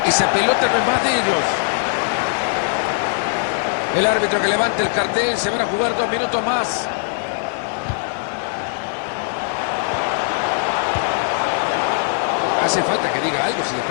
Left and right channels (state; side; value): silent; right; digital silence